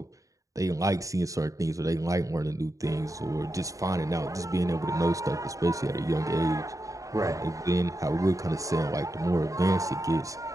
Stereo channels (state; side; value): late; left; 0.16 ms